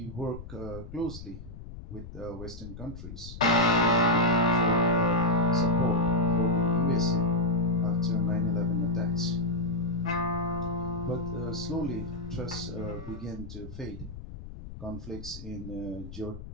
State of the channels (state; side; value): noise; left; rumble, 12 dB below the sound